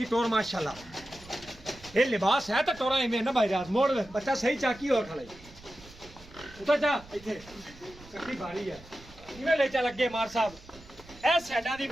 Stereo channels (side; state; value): right; noise; rumble, 21 dB below the sound